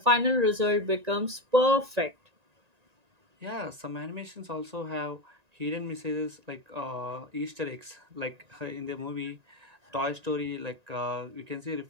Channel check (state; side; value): late; left; 1.9 ms